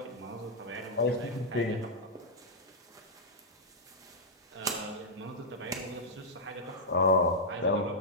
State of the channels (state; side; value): normal; both; correlation -0.08